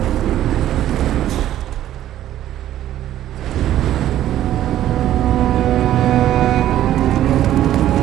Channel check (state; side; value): quieter; left; 12.5 dB